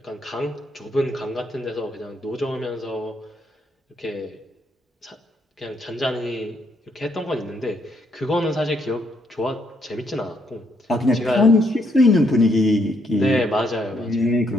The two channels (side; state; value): both; normal; correlation 0.73